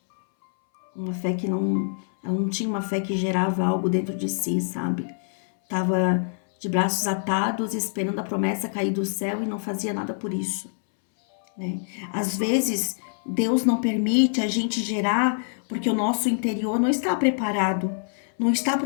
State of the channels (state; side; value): silent; right; 62 dB below the other